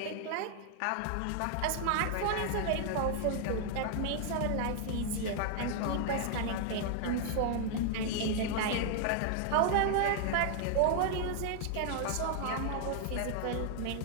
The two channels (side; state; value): both; different; correlation 0.00